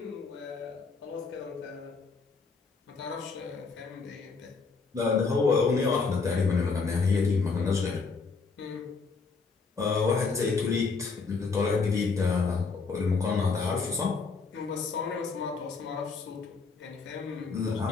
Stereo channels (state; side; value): quieter; right; 4.6 dB